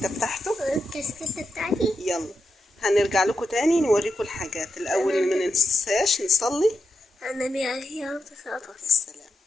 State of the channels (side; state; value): both; normal; correlation 0.86